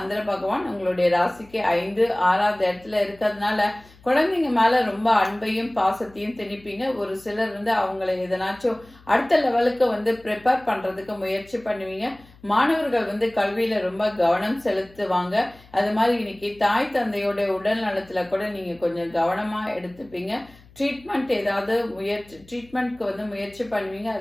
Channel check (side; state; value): left; noise; hum, 25 dB below the sound